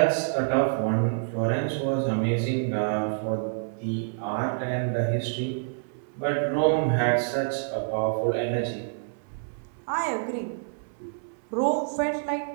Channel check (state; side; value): silent; left; 60 dB below the other